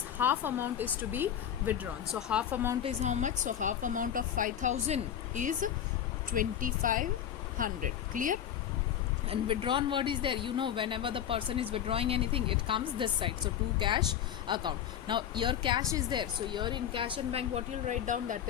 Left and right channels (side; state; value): right; quieter; 9.8 dB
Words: half amount is to be withdrawn. So half amount is how much? So half amount of 5,000 is 2,500. Clear? And withdrawn word is there. You know, whenever the person is withdrawing anything, it comes this side. So to cash account. Now here cash is there. So here in cash and bank, what you'll write down, that